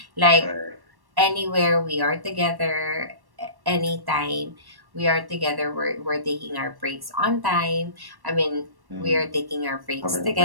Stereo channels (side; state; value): left; late; 1.1 ms